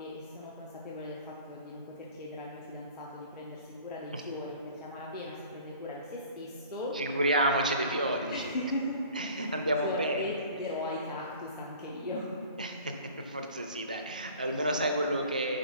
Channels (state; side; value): inverted; both; correlation -0.46